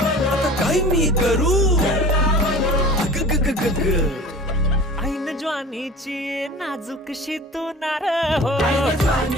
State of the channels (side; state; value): both; normal; correlation 0.40